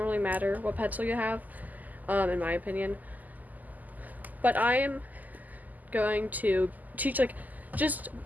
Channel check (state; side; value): late; left; 0.081 ms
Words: matter what pencil you have, in my opinion. But I am going to teach, like, just